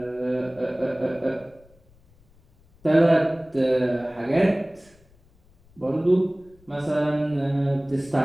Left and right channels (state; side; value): noise; left; rumble, 30 dB below the sound